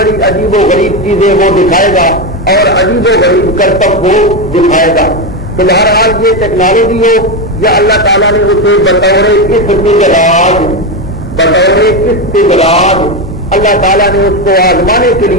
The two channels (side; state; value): both; normal; correlation 0.11